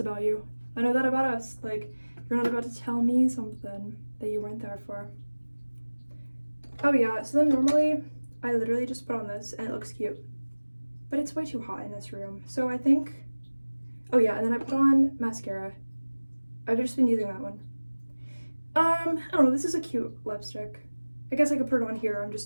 you. I know that about us. Like, you're not about to tell me something that you weren't there for. Oh yeah, so then normally, I literally just put on this and it looks cute. But it's way too hot in this room. So I think, oh yeah, and then I put on mascara. I've just been using that one. I don't know, this is a cute lipstick. I guess I could put it on here. I'm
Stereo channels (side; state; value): both; inverted; correlation -1.00